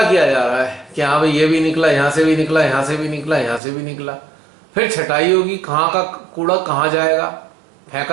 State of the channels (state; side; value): drops out; left; at 3.6 s